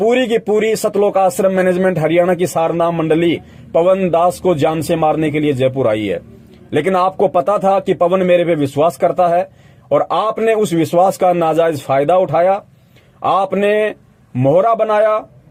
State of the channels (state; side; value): identical; both; correlation 1.00